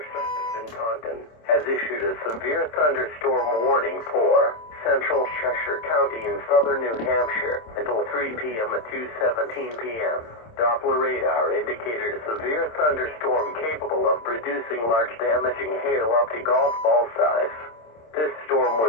service in Taunton has issued a severe thunderstorm warning for central Cheshire County in southern New Hampshire until 3 p.m. at 2:17 p.m. Doppler radar indicated a severe thunderstorm capable of producing large damaging hail up to golf ball size. This storm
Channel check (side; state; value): right; late; 26 ms